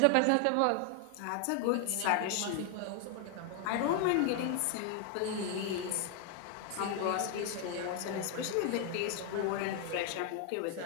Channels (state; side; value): different; both; correlation 0.00